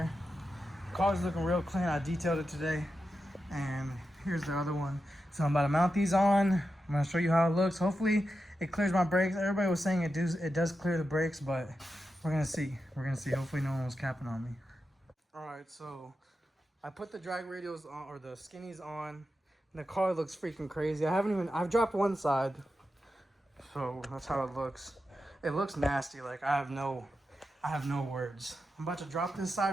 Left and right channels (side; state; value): both; normal; correlation 0.89